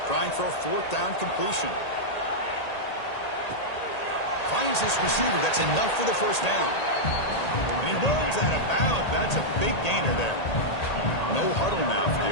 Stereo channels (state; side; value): late; right; 1.8 ms